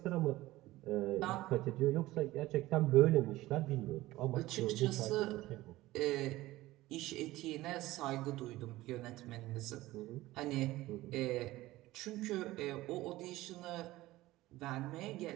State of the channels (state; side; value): quieter; left; 17.5 dB